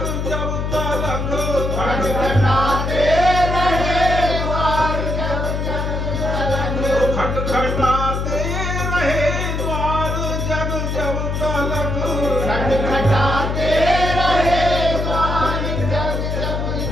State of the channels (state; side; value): noise; left; hum, 2 dB below the sound